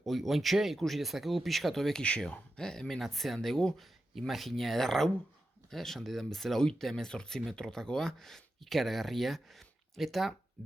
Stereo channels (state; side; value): normal; both; correlation 0.90